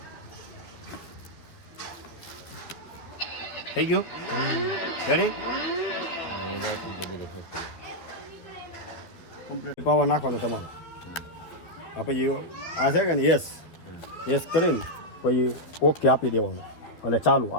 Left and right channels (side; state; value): right; late; 12 ms